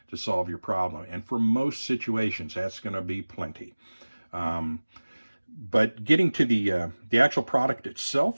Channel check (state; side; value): inverted; both; correlation -1.00